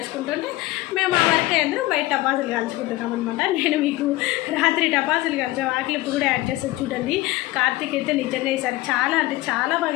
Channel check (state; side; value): quieter; right; 18.4 dB